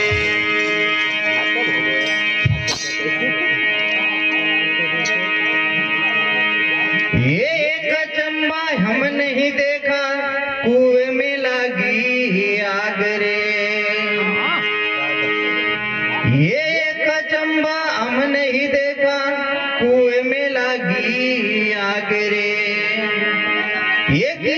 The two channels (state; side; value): identical; both; correlation 1.00